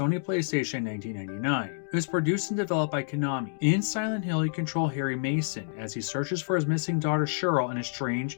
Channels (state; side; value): silent; right; digital silence